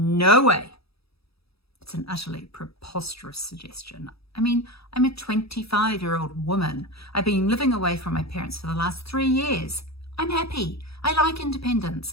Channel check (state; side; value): late; right; 0.77 ms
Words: way. It's an utterly preposterous suggestion. I mean, I'm a 25-year-old woman. I've been living away from my parents for the last 3 years. I'm happy. I like